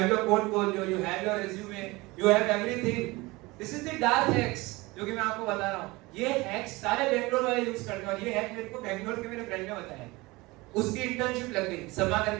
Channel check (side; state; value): left; quieter; 22.3 dB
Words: your portfolio, you have your resume, you have everything. This is the dark hacks जो कि मैं आपको बता रहा हूँ। ये हैक्स सारे बैंगलोर वाले यूज करते हैं, और ये हैक मेरे को बैंगलोर के मेरे फ्रेंड ने बताया। उसकी इंटर्नशिप लग गई, समा